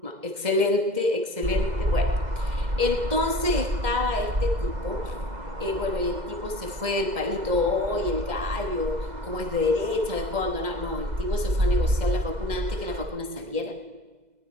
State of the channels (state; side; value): late; left; 2.0 ms